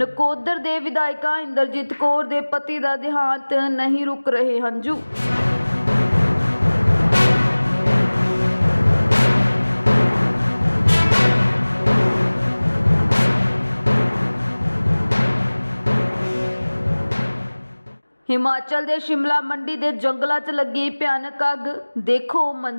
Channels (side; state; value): both; inverted; correlation -1.00